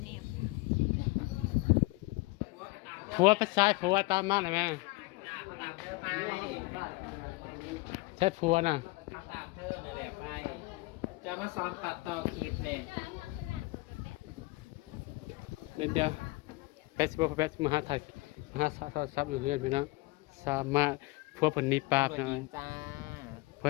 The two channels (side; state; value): right; quieter; 23.4 dB